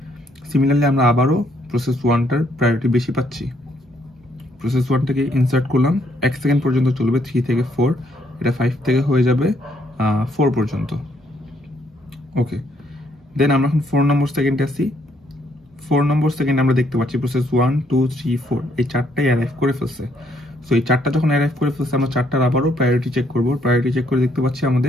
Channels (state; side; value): normal; both; correlation 0.70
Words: সিমিলারলি আমরা আবারও প্রসেস 1টার প্রায়োরিটি বেশি পাচ্ছি। প্রসেস 1টাকে ইনসার্ট করলাম, 1 সেকেন্ড পর্যন্ত চলবে, 3 থেকে 4, এটা 5 থেকে হয়ে যাবে 4 পর্যন্ত। ওকে, দেন আমরা এখন 4 নম্বর সেকেন্ডে আসি। 4 নম্বর সেকেন্ডে আমরা দেখতে পাচ্ছি প্রসেস 1 2 3 4 এই চারটাই অ্যারাইভ করে ফেলছে। সো এই চারটা যখন অ্যারাইভ করে ফেলছে আমরা চারটার আবারও প্রায়োরিটি চেক করব। প্রায়োরিটি চেক করে দেখতে পাচ্ছি